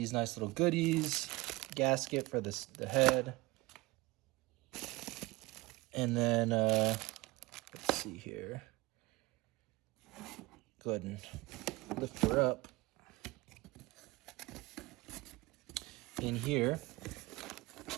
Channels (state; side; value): quieter; left; 21.8 dB